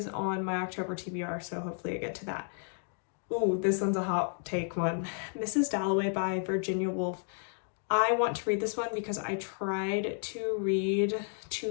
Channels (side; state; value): right; silent; 56 dB below the other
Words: on my October TBR, so hopefully I get to that. Ooh, this one's a hot take one. Mrs. Dalloway by Virginia Woolf. I want to read this one because I tried to read